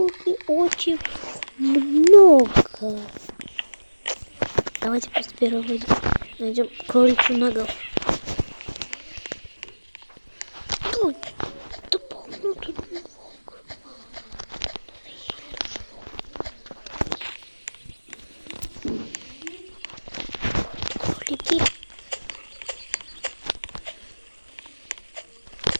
очень много. Давайте просто первого найдем кроличью ногу.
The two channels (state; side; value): inverted; both; correlation -1.00